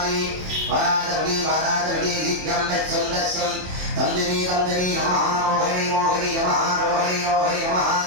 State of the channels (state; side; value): late; left; 27 ms